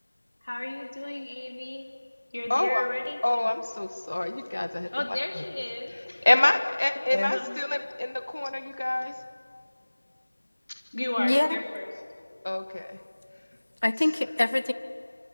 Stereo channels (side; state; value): both; inverted; correlation -1.00